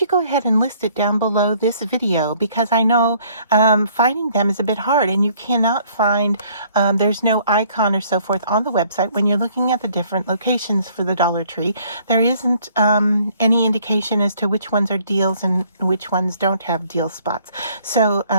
go ahead and list it down below this video, because I know finding them is a bit hard, and you cannot find, there's no icon or so forth on the website when you're looking at the different locations for the Dollar Tree. There isn't any indication as to which ones are deals and which ones don't have deal spots. So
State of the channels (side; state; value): both; inverted; correlation -0.61